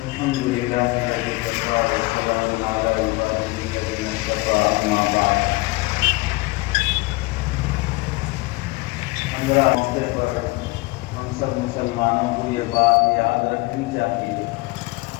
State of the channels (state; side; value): quieter; right; 23.8 dB